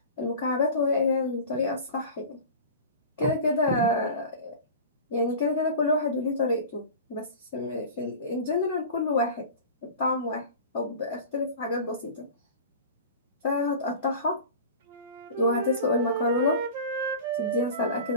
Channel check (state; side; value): inverted; both; correlation -0.35